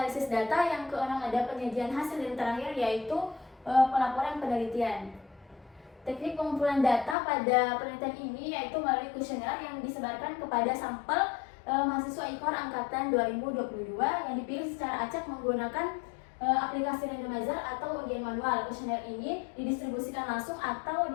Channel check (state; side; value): drops out; right; at 7.2 s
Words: data, yang keenam ada penyajian hasil, dan terakhir yaitu pelaporan penelitian. Teknik pengumpulan data pada penelitian ini yaitu melalui kuesioner yang disebarkan kepada sampel mahasiswa IKOR angkatan 2022 yang dipilih secara acak menggunakan aplikasi randomizer atau ujian manual. Kuesioner ini didistribusikan langsung atau